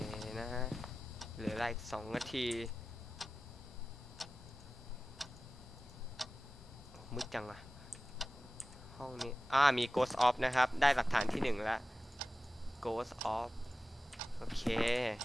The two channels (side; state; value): both; normal; correlation 0.95